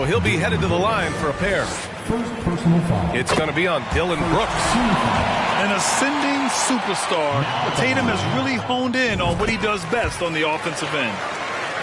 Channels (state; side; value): identical; both; correlation 1.00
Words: he'll be headed to the line for a pair. First personal foul. It's going to be on Dillon Brooks. An ascending superstar, Tatum has really honed in on what he does best on the offensive end.